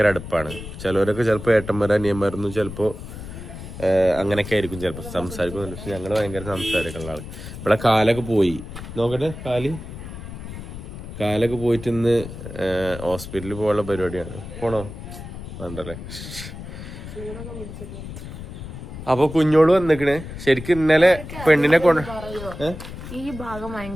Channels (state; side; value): noise; left; rumble, 11 dB below the sound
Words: അടുപ്പാണ്. ചിലവരൊക്കെ ചിലപ്പോൾ ഏട്ടന്മാരും അനിയന്മാരൊന്നും ചിലപ്പോൾ അങ്ങനെയൊക്കെ ആയിരിക്കും ചിലപ്പോൾ സംസാരിക്കുന്നുണ്ട്. പക്ഷെ ഞങ്ങൾ ഭയങ്കര സംസാരിക്കുള്ള ആൾ. ഇവിടെ കാലൊക്കെ പോയി, നോക്കട്ടെ, കാലൊക്കെ പോയിട്ട് ഇന്ന് ഹോസ്പിറ്റലിൽ പോകാനുള്ള പരിപാടിയാണ്. പോണോ വേണ്ടല്ലേ? അപ്പൊ കുഞ്ഞോട് വന്നിക്കണ്. ശരിക്കും ഇന്നലെ പെണ്ണിനെ കൊണ്ട് ഈ ഭാഗം